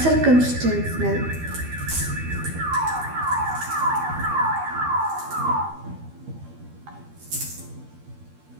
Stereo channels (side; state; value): left; late; 12 ms